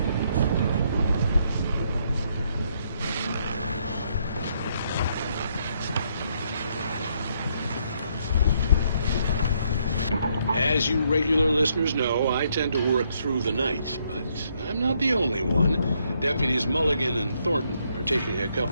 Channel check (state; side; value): inverted; both; correlation -0.72